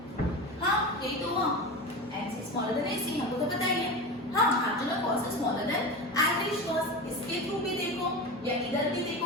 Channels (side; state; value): both; normal; correlation 0.26